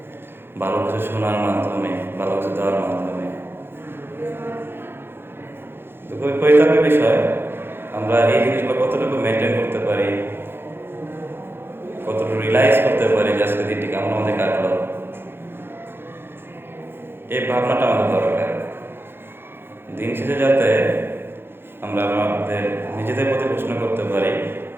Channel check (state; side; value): late; left; 0.11 ms